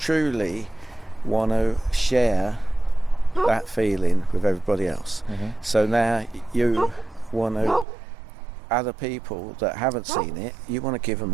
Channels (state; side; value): drops out; left; at 7.9 s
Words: want to share that feeling with everybody else. So now you want to, other people that haven't seen it, you want to give them